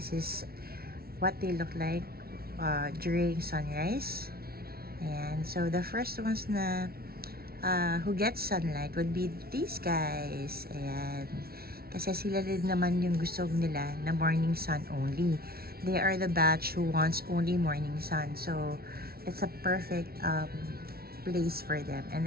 is what they look like during sunrise. Ayan, so the first ones na who gets sunlight would be these guys. Ayan. Kasi sila din naman yung gusto nila na morning sun only. They are the batch who wants only morning sun. So, it's a perfect place for them. And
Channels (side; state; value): left; late; 0.44 ms